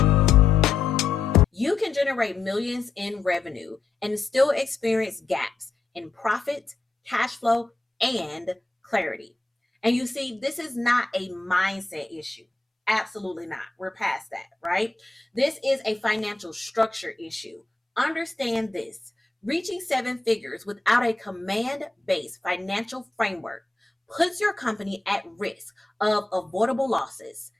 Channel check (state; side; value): quieter; right; 3.5 dB